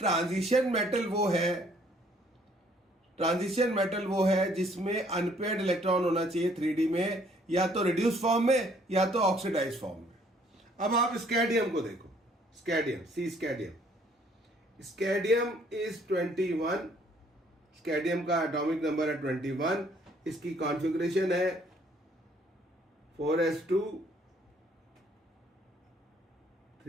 मेटल वो है जिसमें अनपेयर्ड इलेक्ट्रॉन होना चाहिए 3D में, या तो रिड्यूस फॉर्म में या तो ऑक्सीडाइज फॉर्म में। अब आप स्कैडियम को देखो, स्कैडियम इज 21, स्कैडियम का एटॉमिक नंबर है 21, इसकी कॉन्फ़िगरेशन है 4s2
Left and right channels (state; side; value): normal; both; correlation 0.62